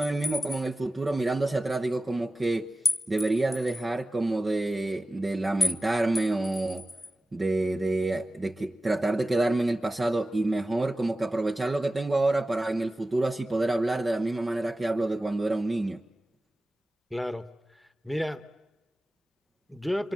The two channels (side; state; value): both; normal; correlation 0.95